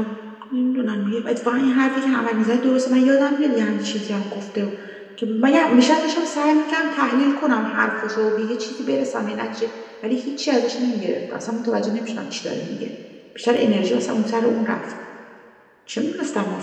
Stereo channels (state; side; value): identical; both; correlation 1.00